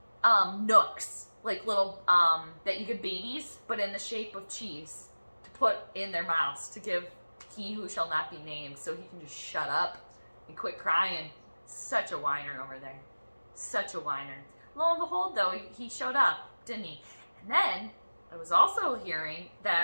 nooks, like little, that you give babies, but in the shape of cheese, to put in their mouths, to give he who shall not be named, so he can just shut up and quit crying. Such a whiner over there. Such a whiner. Lo and behold, though, he showed up, didn't he? And then, I was also hearing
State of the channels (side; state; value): both; inverted; correlation -1.00